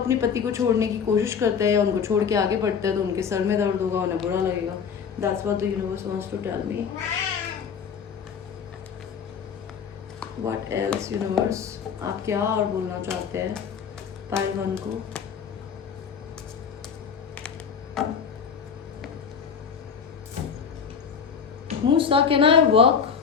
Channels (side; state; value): right; quieter; 6.7 dB